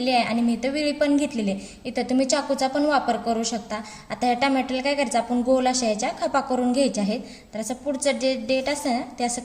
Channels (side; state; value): both; identical; correlation 1.00